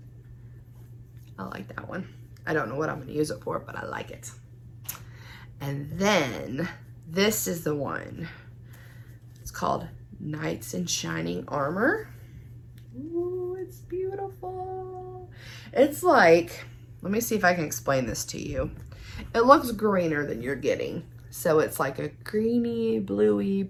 I like that one. I don't know what I'm going to use it for, but I like it. And then this is the one. It's called Knights in Shining Armor. Ooh, it's beautiful. It's like, let me see if I can explain this to you. It looks greener than you're getting. So it's like a greeny, bluey,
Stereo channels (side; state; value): both; identical; correlation 1.00